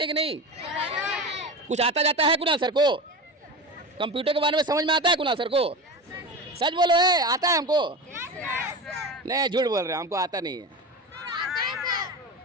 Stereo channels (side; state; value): both; normal; correlation 0.26